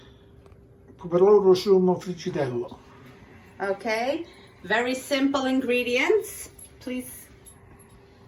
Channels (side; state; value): both; identical; correlation 1.00